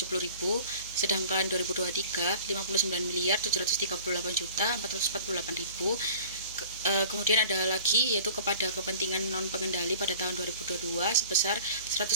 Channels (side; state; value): both; inverted; correlation -0.45